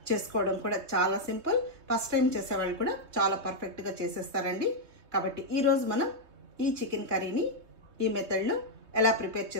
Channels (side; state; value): left; late; 3.2 ms